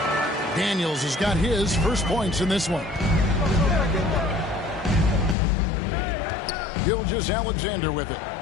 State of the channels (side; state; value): right; drops out; at 5.4 s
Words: Daniels has got his first points in this one. Gilgeous-Alexander with it.